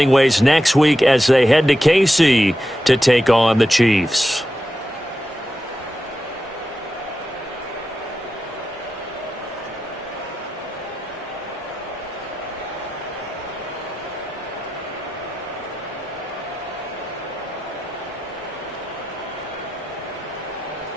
ways next week as they head to KC to take on the Chiefs.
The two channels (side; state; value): both; normal; correlation 0.90